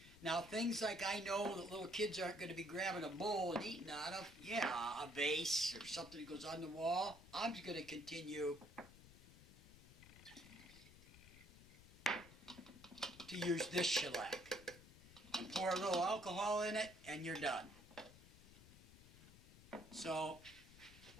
Now, things like I know that little kids aren't going to be grabbing a bowl and eating out of, yeah, a vase or something that goes on the wall, I'm just going to continue to use this shellac. And pour a little alcohol in it, and you're done. So,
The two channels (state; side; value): noise; left; rumble, 19 dB below the sound